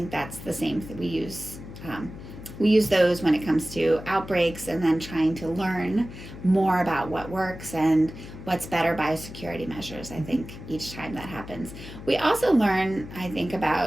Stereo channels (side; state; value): left; noise; hum, 13 dB below the sound